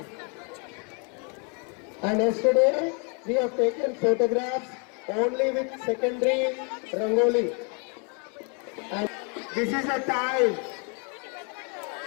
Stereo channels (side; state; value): right; quieter; 36.8 dB